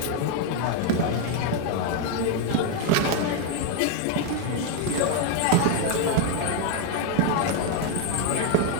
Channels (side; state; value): both; different; correlation 0.01